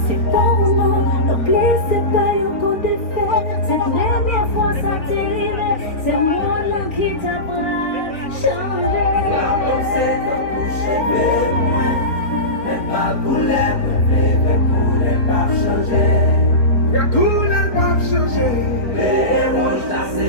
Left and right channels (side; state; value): right; late; 3.6 ms